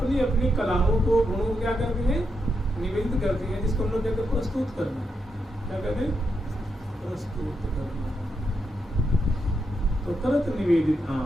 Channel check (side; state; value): both; normal; correlation 0.83